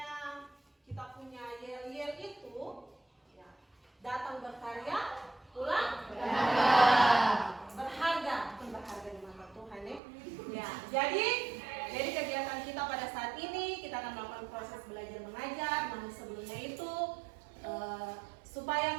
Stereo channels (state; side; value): drops out; left; at 10.0 s